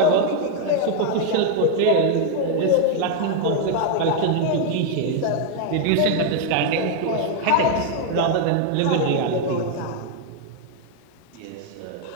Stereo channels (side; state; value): both; different; correlation 0.00